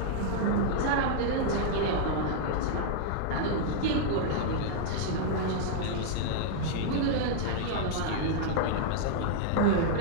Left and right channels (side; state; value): both; different; correlation -0.01